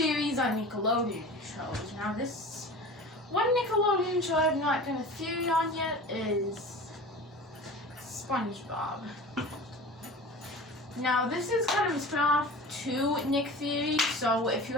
on Nickelodeon shows. Now this one Nickelodeon show I've not done a theory on yet is SpongeBob. Now this is kind of a spin-off to Nick Theory, so if you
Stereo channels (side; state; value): both; normal; correlation 0.36